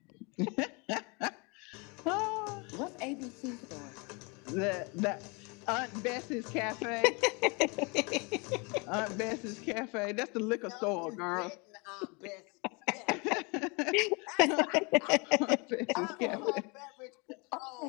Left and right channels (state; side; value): quieter; right; 30.1 dB